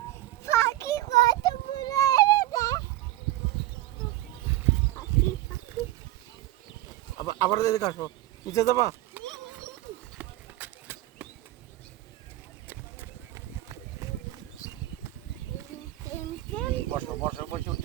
আবার এদিকে আসো, নিচে যাবা। বসো বসো, বসে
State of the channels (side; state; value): left; quieter; 15.6 dB